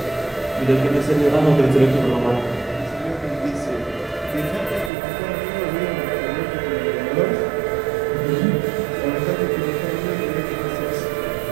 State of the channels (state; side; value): drops out; left; at 4.9 s